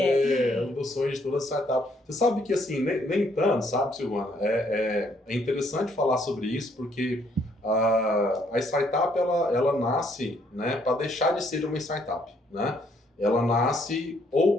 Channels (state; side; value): normal; both; correlation 0.68